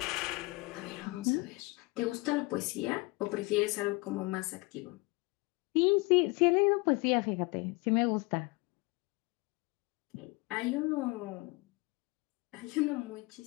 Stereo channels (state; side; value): quieter; right; 24.9 dB